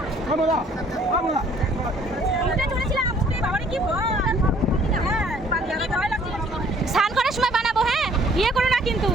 স্নান করার সময় বানাবো, হ্যাঁ ইয়ে করো না কিন্তু,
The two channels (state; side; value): normal; both; correlation 0.59